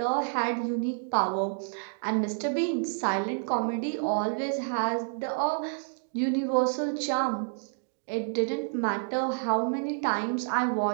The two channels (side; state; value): left; silent; digital silence